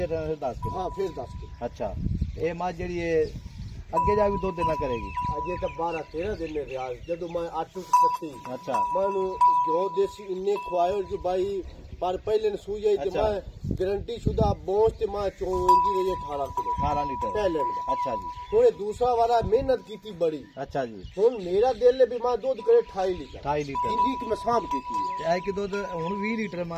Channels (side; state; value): both; identical; correlation 1.00